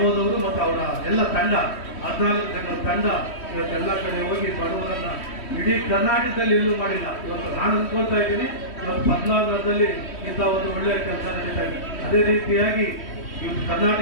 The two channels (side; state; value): right; late; 3.1 ms